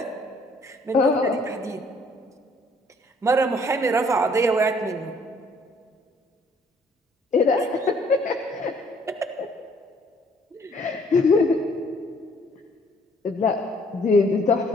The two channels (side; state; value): both; normal; correlation 0.62